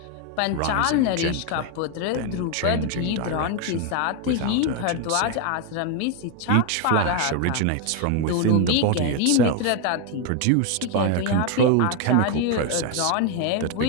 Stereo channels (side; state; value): both; different; correlation 0.01